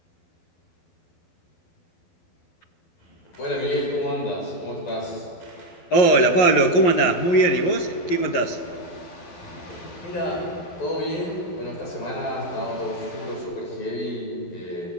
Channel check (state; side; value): late; right; 11 ms